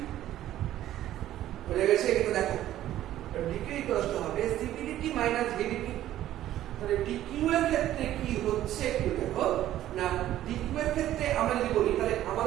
হয়ে গেছে এটা দেখো dq equals to হবে cp dt minus vdp তাহলে dq এর ক্ষেত্রে কি হচ্ছে একটু দেখো না dq এর ক্ষেত্রে আমরা যদি বলি তাহলে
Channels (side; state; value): left; quieter; 13.0 dB